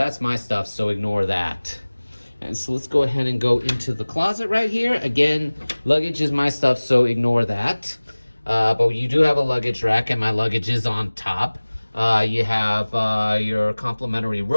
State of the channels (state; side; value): inverted; both; correlation -1.00